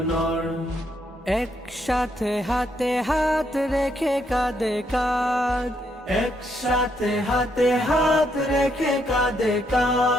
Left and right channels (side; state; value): both; normal; correlation 0.75